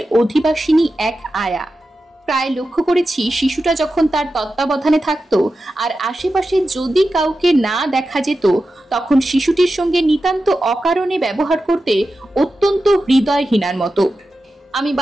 অধিবাসিনী এক আয়া। প্রায় লক্ষ্য করেছি শিশুটা যখন তার তত্ত্বাবধানে থাকতো আর আশেপাশে যদি কাউকে না দেখা যেত তখন শিশুটির সঙ্গে নিতান্ত অকারণে ব্যবহার করতে অত্যন্ত হৃদয়হীনার মতো। আমি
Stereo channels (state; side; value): normal; both; correlation 0.92